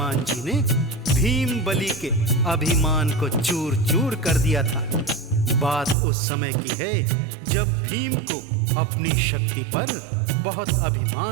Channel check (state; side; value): drops out; left; at 6.0 s